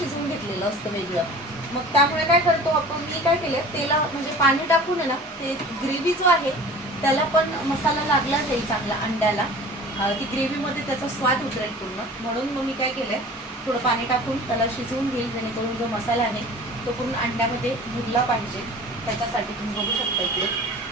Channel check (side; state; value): both; normal; correlation 0.42